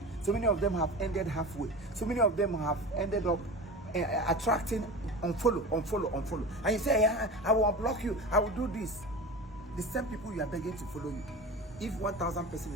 So many of them have ended halfway. So many of them have ended up attracting unfollow. And you say, yeah, I will unblock you. I will do this. The same people you are begging to follow you. If 1,000 person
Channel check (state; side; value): normal; both; correlation 0.31